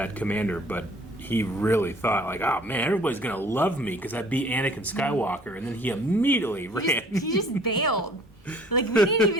commander, but he really thought, like, oh man, everybody's gonna love me because I beat Anakin Skywalker, and then he immediately ran. He just bailed. Like, we didn't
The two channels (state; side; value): normal; both; correlation 0.54